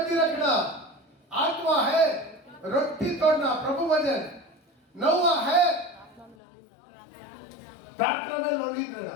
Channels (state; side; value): drops out; right; at 6.4 s